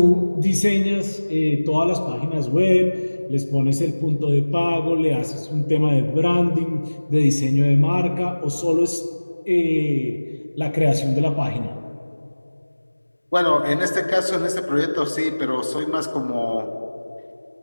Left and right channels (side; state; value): both; inverted; correlation -1.00